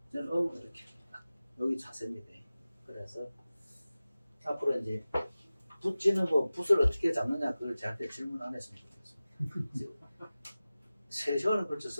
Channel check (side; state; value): both; inverted; correlation -0.96